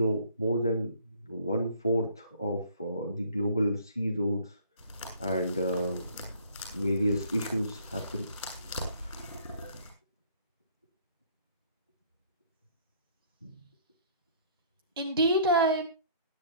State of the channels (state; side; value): inverted; both; correlation -0.59